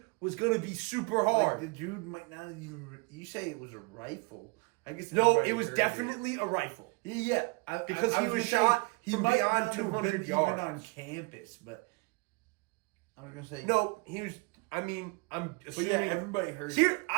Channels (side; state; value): left; quieter; 29.6 dB